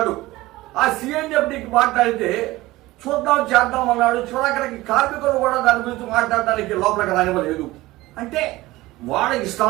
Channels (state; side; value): quieter; left; 18.5 dB